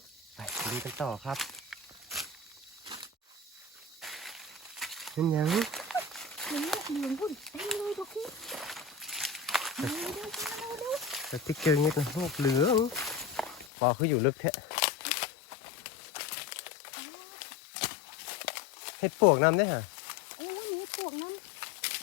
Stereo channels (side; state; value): right; drops out; at 13.7 s